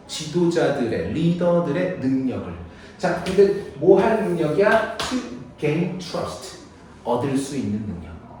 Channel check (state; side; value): identical; both; correlation 1.00